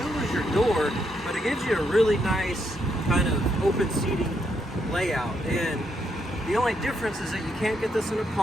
lose your door, but it gives you a really nice kind of open seating layout. And the only difference is that you can't get this in a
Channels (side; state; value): both; normal; correlation 0.77